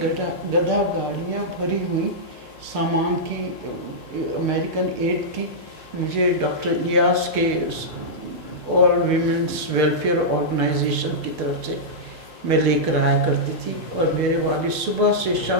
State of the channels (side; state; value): both; normal; correlation -0.11